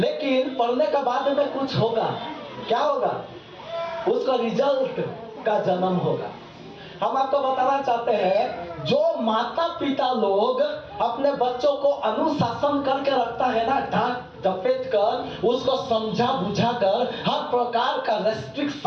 पढ़ने के बाद में कुछ होगा। क्या होगा? उसका रिजल्ट का जन्म होगा। हम आपको बताना चाहते हैं, जो माता पिता लोग अपने बच्चों को अनुशासन करके रखता है ना, डांट डपेट कर, उसको समझा बुझा कर, हर प्रकार का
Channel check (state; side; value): identical; both; correlation 1.00